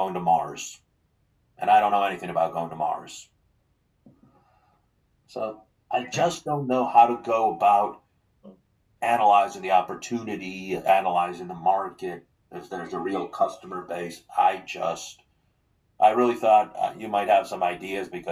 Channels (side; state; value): both; identical; correlation 1.00